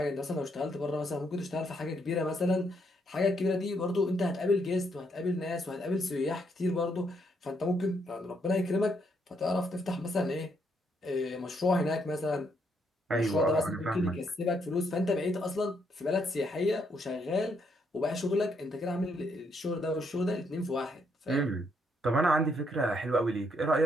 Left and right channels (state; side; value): normal; both; correlation 0.74